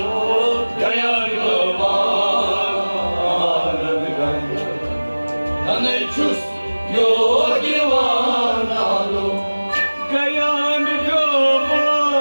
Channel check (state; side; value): inverted; both; correlation -1.00